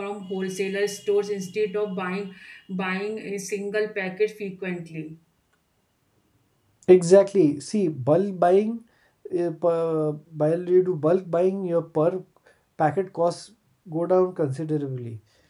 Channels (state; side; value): identical; both; correlation 1.00